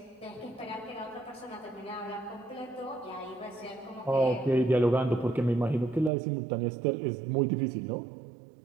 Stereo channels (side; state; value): left; drops out; at 6.1 s